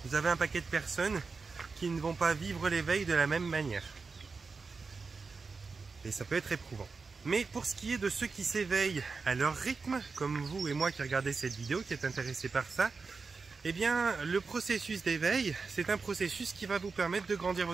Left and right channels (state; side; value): quieter; left; 4.6 dB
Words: vous avez un paquet de personnes qui ne vont pas vivre l'éveil de la même manière. Et ça peut être éprouvant. Mais pour ce qui est de ceux qui s'éveillent à leur rythme, comme vous et moi qui regardez cette vidéo, qui est intéressé par ça, eh bien, le processus d'éveil, c'est un processus qui va vous permettre de grandir